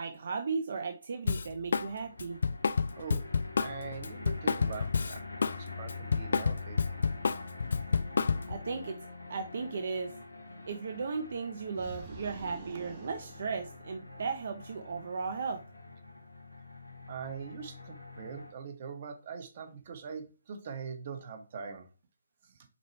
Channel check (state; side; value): inverted; both; correlation -0.82